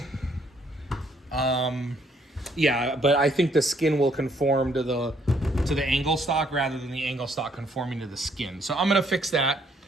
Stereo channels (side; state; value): both; normal; correlation 0.68